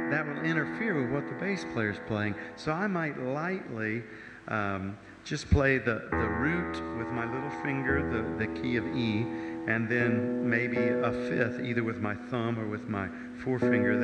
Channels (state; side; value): identical; both; correlation 1.00